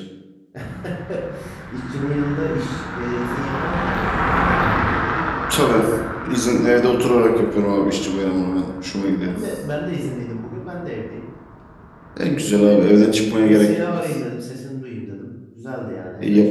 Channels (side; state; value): both; identical; correlation 1.00